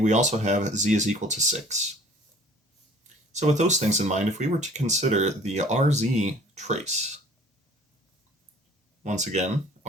also have z is equal to 6. So with those things in mind, if we were to consider the RZ trace, once again,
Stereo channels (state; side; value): normal; both; correlation 0.51